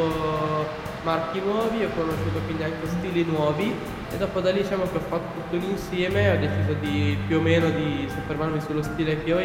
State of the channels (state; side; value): identical; both; correlation 1.00